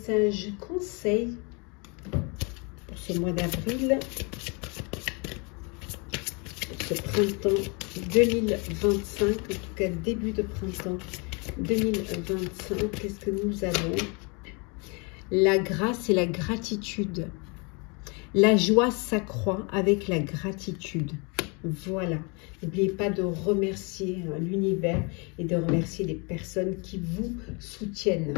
conseil pour ce mois d'avril, pour ce printemps 2025, en tout cas début de printemps 2025, qu'est-ce que nous avons? La grâce et la gratitude. La joie s'accroît avec la gratitude. Voilà. N'oubliez pas de remercier l'univers et de remercier les personnes qui vous soutiennent.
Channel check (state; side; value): quieter; right; 32.0 dB